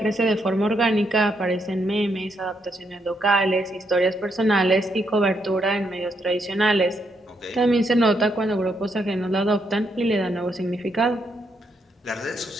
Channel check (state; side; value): normal; both; correlation 0.77